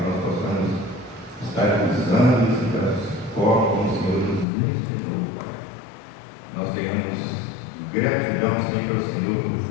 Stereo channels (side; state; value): right; drops out; at 4.5 s